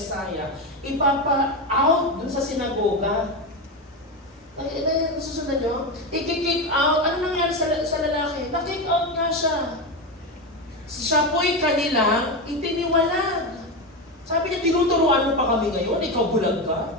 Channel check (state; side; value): normal; both; correlation 0.15